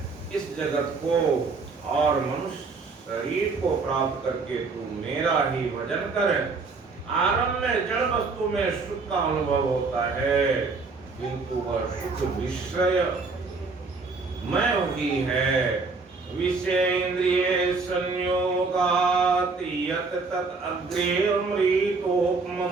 इस जगत को और मनुष्य शरीर को प्राप्त करके तू मेरा ही भजन कर। आरंभ में जड़ वस्तु में सुख का अनुभव होता है, किंतु वह सुख विषय में ही है। विषय इंद्रिय संयोगात यत तत् अग्रे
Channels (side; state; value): left; quieter; 4.2 dB